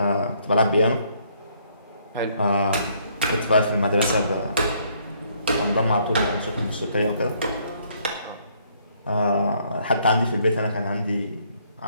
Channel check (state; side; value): inverted; both; correlation -0.67